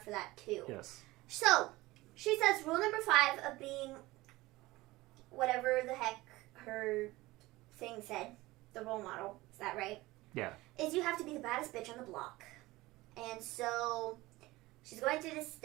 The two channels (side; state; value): left; quieter; 19.6 dB